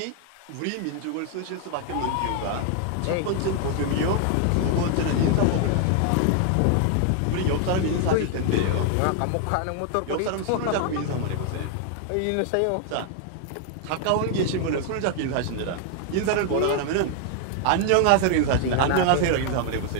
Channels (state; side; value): different; both; correlation 0.00